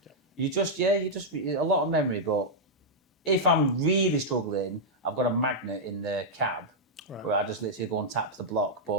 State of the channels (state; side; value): normal; both; correlation -0.06